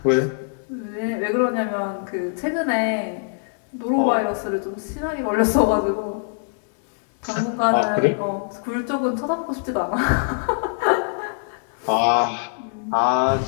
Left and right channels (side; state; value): right; silent; 63 dB below the other